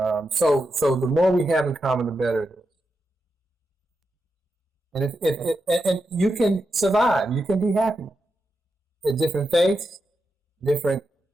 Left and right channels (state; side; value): normal; both; correlation 0.87